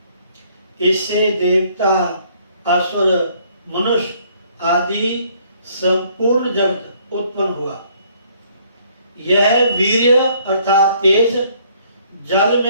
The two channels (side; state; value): both; inverted; correlation -0.63